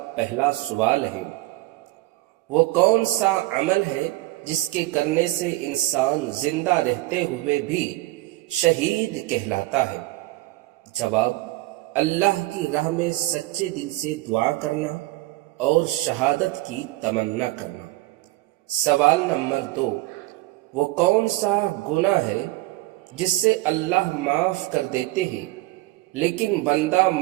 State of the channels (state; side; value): quieter; left; 19.2 dB